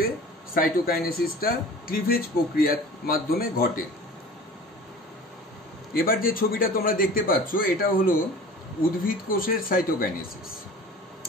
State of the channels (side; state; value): both; normal; correlation 0.41